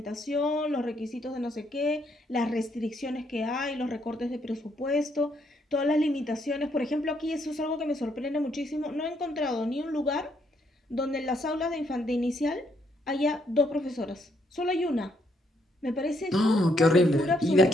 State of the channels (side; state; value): both; normal; correlation 0.73